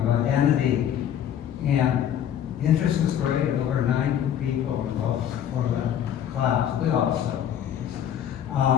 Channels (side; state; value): right; quieter; 9.9 dB